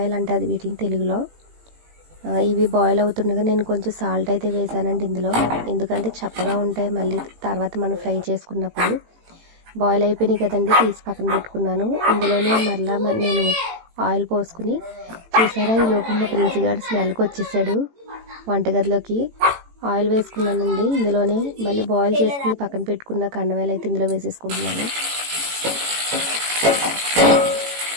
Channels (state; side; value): late; left; 18 ms